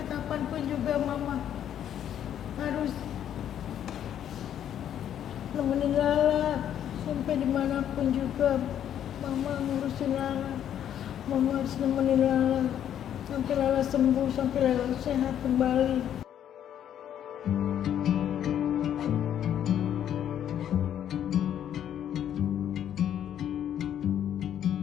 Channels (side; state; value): right; quieter; 10.1 dB